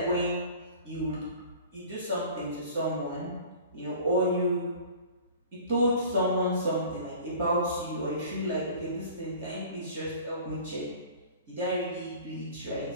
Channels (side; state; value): both; inverted; correlation -0.43